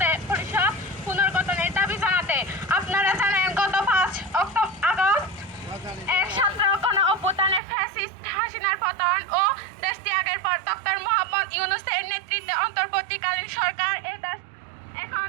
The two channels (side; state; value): left; drops out; at 7.6 s